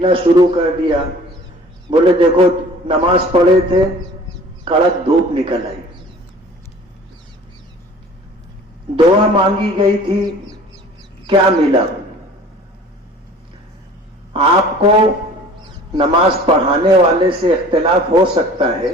شروع کر دیا، بولے دیکھو نماز پڑھے تھے، کڑک دھوپ نکل آئی، دعا مانگی گئی تھی، کیا ملا؟ آپ کو نماز پڑھانے والے سے اختلاف ہو سکتا ہے،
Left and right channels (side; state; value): both; normal; correlation 0.47